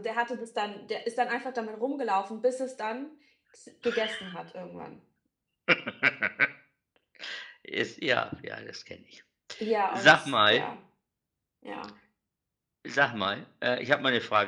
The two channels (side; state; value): both; identical; correlation 1.00